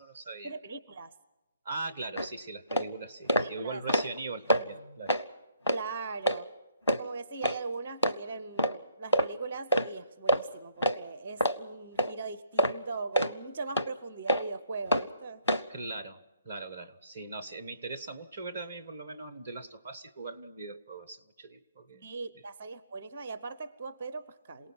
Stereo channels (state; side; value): inverted; both; correlation -0.66